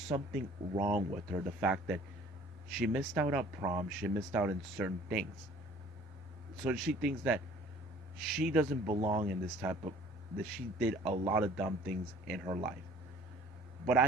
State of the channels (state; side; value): normal; both; correlation 0.52